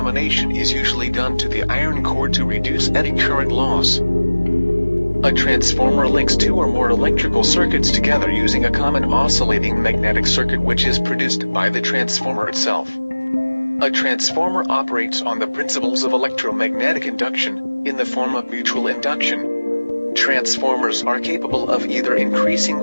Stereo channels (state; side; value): inverted; both; correlation -1.00